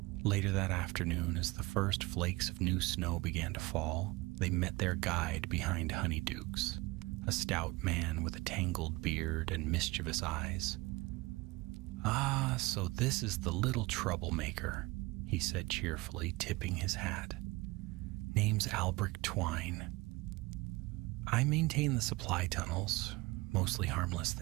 Later that afternoon, as the first flakes of new snow began to fall, they met their guide behind Honeydukes, a stout man with a tangled beard and mischievous eyes. Ah, so this is the little troublemaker, he said cheerfully, tipping his hat. Name's Albrecht Twine. I maintain the supply tunnels, mostly harmless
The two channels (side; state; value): left; quieter; 22.4 dB